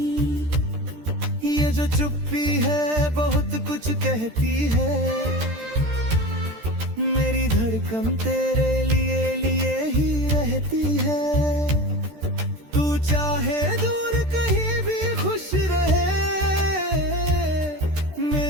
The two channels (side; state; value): left; late; 13 ms